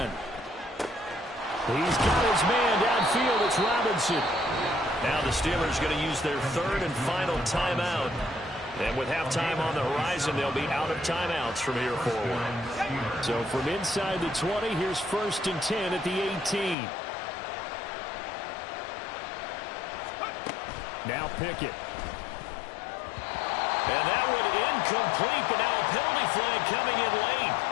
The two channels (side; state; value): right; drops out; at 16.8 s